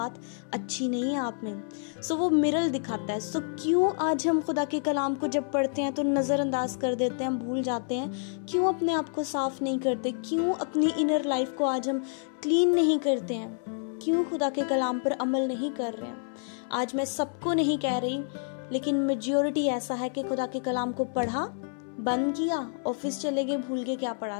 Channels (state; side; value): silent; right; 59 dB below the other